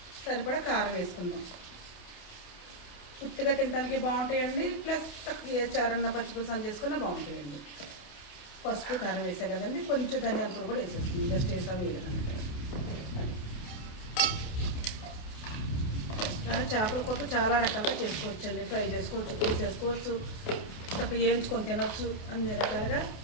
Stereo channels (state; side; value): late; right; 28 ms